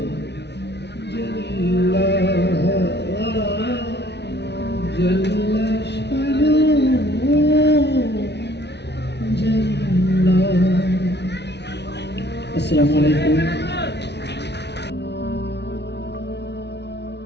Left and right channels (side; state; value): right; late; 0.50 ms